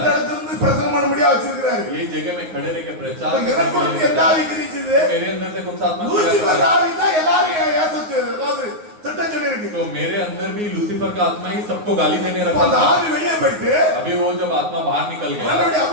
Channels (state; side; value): late; left; 9.5 ms